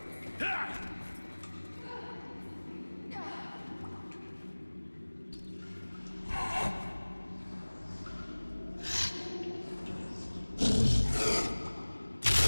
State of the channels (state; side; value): inverted; both; correlation -1.00